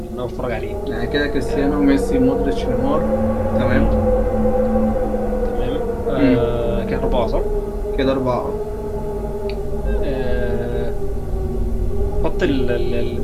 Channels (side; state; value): both; identical; correlation 1.00